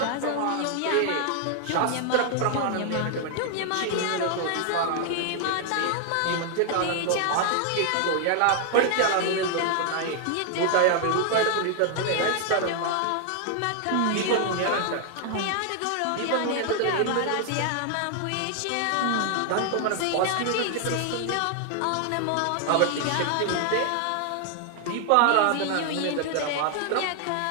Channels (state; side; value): different; both; correlation 0.00